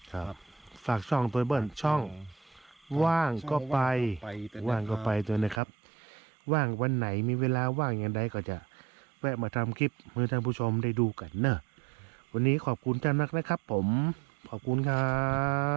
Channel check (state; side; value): drops out; left; at 5.6 s